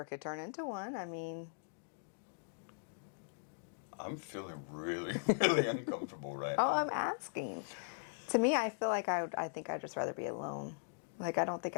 could turn into one. I mean... I'm feeling really, really uncomfortable right Oh, now. I'm asking. To me, I feel like I think I'd just rather be alone. Like, I don't think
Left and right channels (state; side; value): silent; right; digital silence